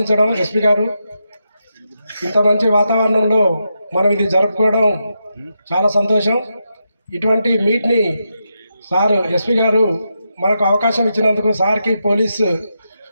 ఎస్పీ గారు ఇంత మంచి వాతావరణంలో మనం ఇది జరుపుకోవడం చాలా సంతోషం. ఇటువంటి మీట్ని సార్ ఎస్పీ గారు మనకు అవకాశం ఇచ్చినందుకు సార్కి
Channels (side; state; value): both; inverted; correlation -0.85